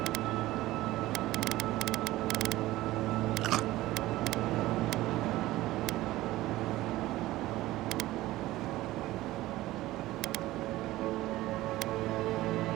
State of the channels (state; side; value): quieter; left; 16.9 dB